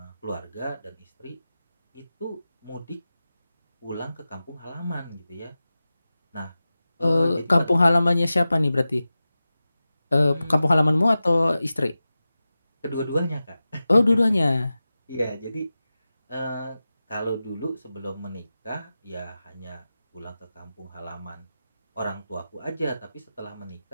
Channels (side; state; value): both; inverted; correlation -0.94